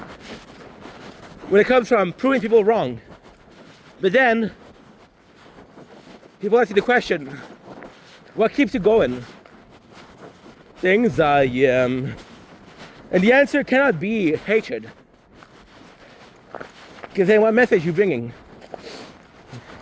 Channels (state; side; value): identical; both; correlation 1.00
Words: proving people wrong. But then people ask you the question, what keeps you going? Things I am. And the answer cannot be hatred. Because then what message you bringing?